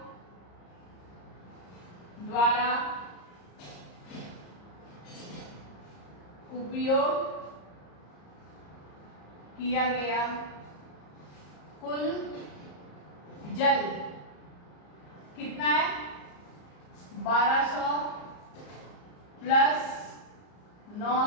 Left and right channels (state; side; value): late; right; 34 ms